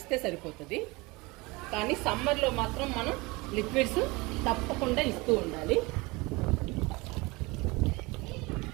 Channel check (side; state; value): left; quieter; 24.3 dB